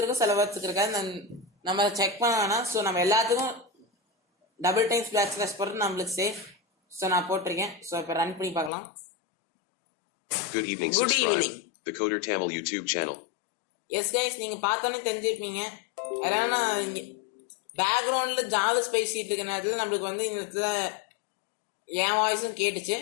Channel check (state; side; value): drops out; right; at 8.7 s